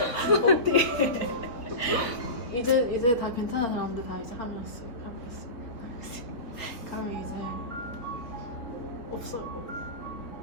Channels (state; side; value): late; right; 3.9 ms